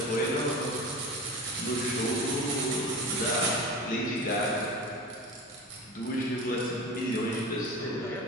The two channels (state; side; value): normal; both; correlation 0.32